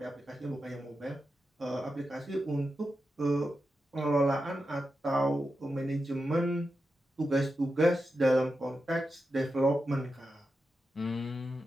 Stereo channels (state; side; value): normal; both; correlation 0.89